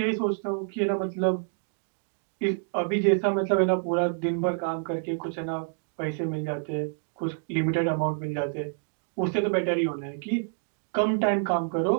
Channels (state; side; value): silent; left; digital silence